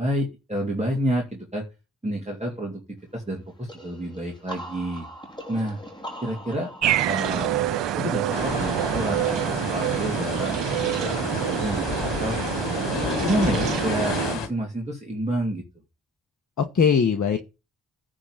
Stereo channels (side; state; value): both; normal; correlation 0.42